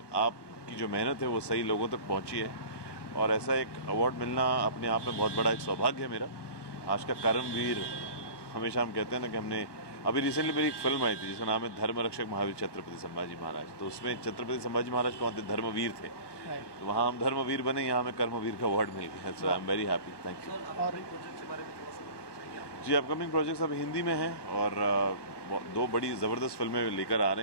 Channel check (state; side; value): late; right; 1.2 ms